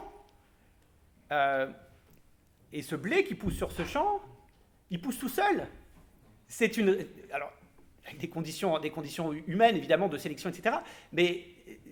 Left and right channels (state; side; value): identical; both; correlation 1.00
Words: et ce blé qui pousse sur ce champ, il pousse tout seul. Alors, avec des conditions humaines, évidemment, de sélection, etc., mais